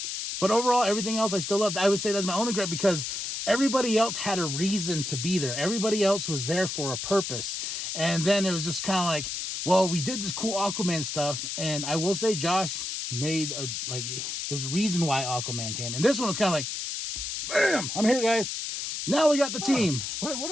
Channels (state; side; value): noise; left; hiss, 4 dB below the sound